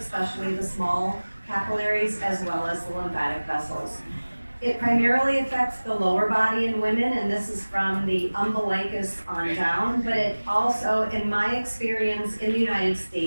the small capillaries, as well as the lymphatic vessels. It primarily affects the lower body in women, and this is from the umbilicus on down, but it also, in my experience in the United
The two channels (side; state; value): both; inverted; correlation -1.00